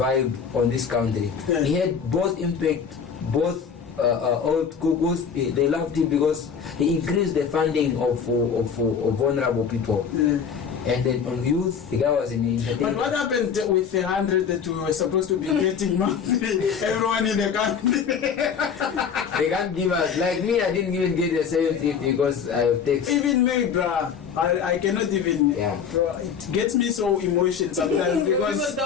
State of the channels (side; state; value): right; quieter; 6.8 dB